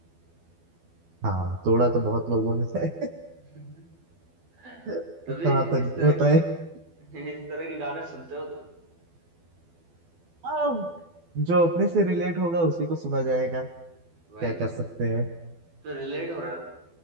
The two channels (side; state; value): left; late; 12 ms